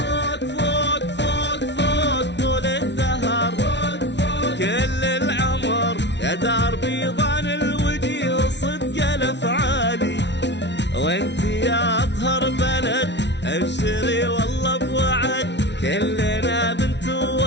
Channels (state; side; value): late; right; 0.51 ms